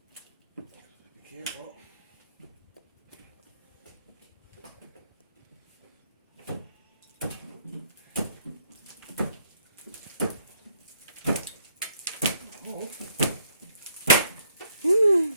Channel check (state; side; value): inverted; both; correlation -0.70